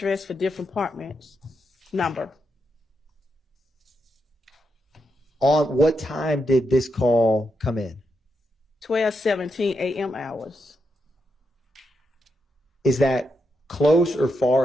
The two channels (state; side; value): normal; both; correlation 0.83